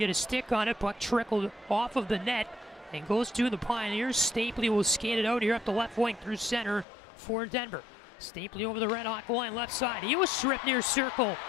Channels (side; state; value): right; drops out; at 6.9 s